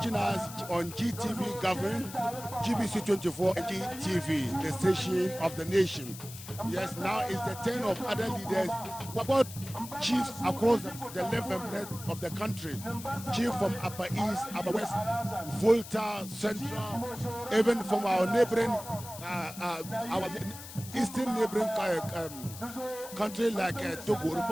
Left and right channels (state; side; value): noise; left; hiss, 13 dB below the sound